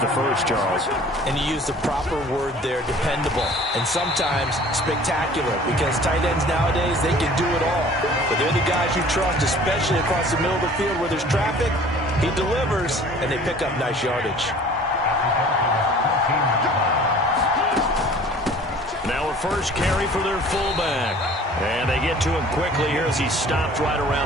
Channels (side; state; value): both; normal; correlation 0.49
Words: first, Charles. And you use the proper word there, dependable, and sometimes spectacular, because tight ends nowadays, they can do it all. But they're the guys you trust, especially across the middle of the field where there's traffic. He delivers, and they pick up nice yardage. Now a first carry for their fullback. And they get to him quickly here as he stopped right